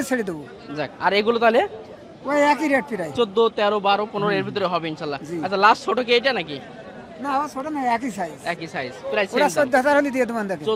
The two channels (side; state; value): both; identical; correlation 1.00